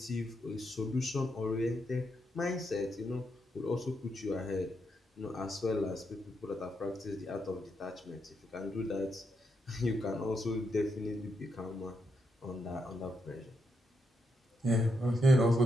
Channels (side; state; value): both; normal; correlation 0.81